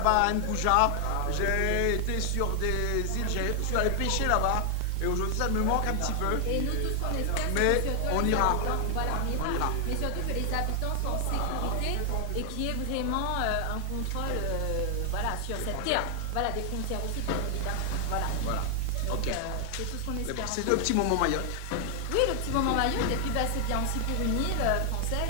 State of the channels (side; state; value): both; different; correlation 0.00